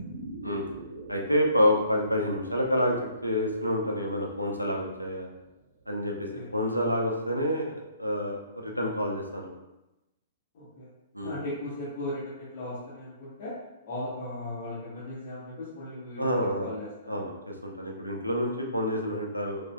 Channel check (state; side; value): inverted; both; correlation -0.62